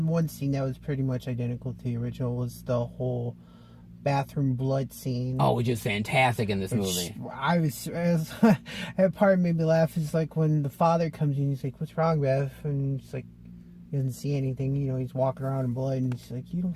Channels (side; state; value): both; identical; correlation 1.00